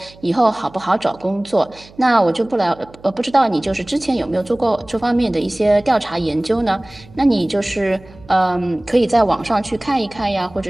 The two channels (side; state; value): right; noise; hum, 23 dB below the sound